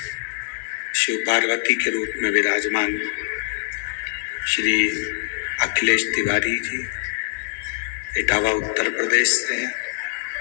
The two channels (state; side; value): silent; right; 63 dB below the other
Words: शिव पार्वती के रूप में विराजमान श्री अखिलेश तिवारी जी इटावा उत्तर प्रदेश से हैं।